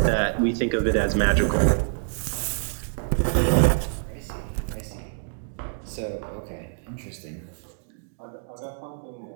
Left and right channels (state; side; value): silent; left; digital silence